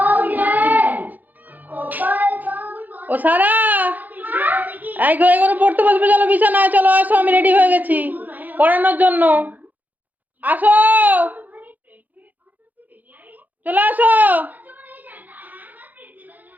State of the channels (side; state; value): left; late; 0.083 ms